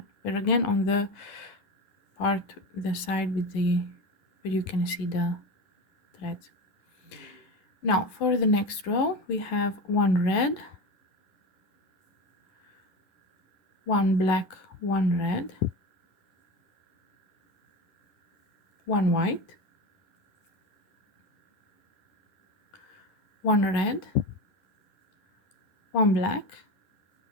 But again, on the part, the side with the, where you can see the threads. Now for the next row, we have 1 red, 1 black, 1 red, 1 white, 1 red, 1 black,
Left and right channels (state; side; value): late; right; 10 ms